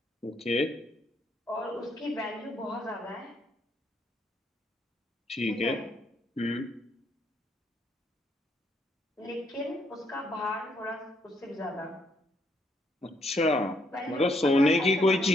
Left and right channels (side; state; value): both; normal; correlation 0.73